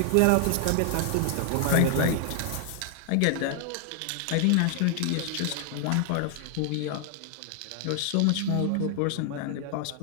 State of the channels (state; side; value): different; both; correlation 0.00